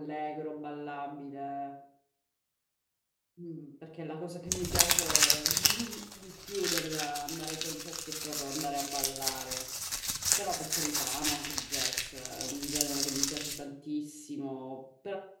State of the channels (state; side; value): identical; both; correlation 1.00